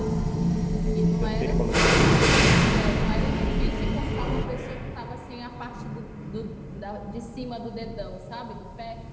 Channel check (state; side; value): identical; both; correlation 1.00